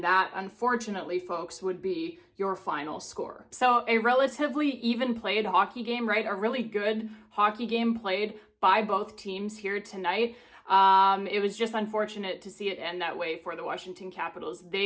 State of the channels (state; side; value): identical; both; correlation 1.00